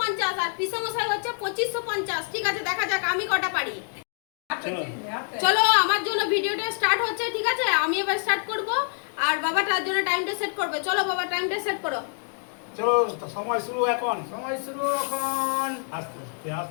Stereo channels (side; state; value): right; silent; 61 dB below the other